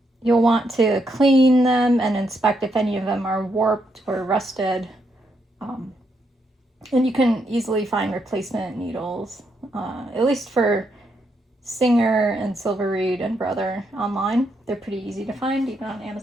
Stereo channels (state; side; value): normal; both; correlation 0.78